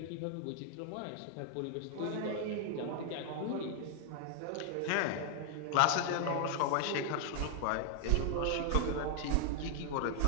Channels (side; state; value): both; different; correlation 0.00